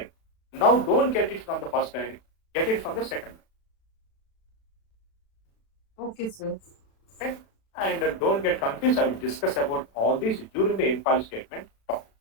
Now don't get it from the first line, get it from the second line. Okay, sir. Okay? And don't get confused. I will discuss about all these during the in-file statement talk.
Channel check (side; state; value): right; late; 36 ms